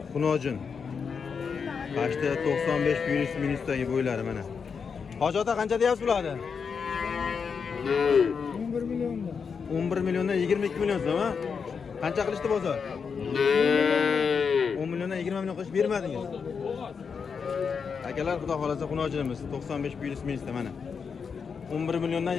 xunojin. Qashda 95 virus minusdagi bo'ylari mana. Hoji ota qancha deyapsiz bularni? 11 million. 11 milliondan 22 million so'm, ha? Qancha qilishdi bozor? 10 milliondan 20 million qilish bermadingiz. Akalar, xudo xolasa xunojinimiz 95 virus minusda mana. 11 milliondan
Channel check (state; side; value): quieter; right; 6.0 dB